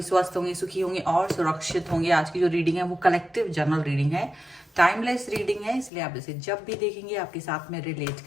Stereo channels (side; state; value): right; drops out; at 5.9 s